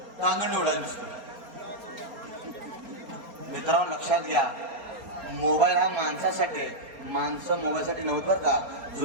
टांगण एवढा दिसतो. मित्रांनो लक्षात घ्या मोबाईल हा माणसासाठी आहे. माणसं मोबाईलसाठी नव्हतं बरं का.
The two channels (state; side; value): late; left; 4.3 ms